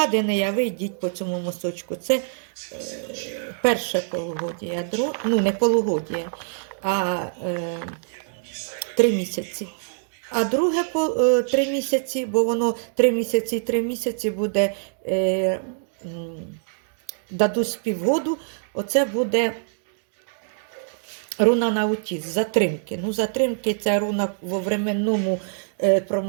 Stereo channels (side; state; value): left; silent; digital silence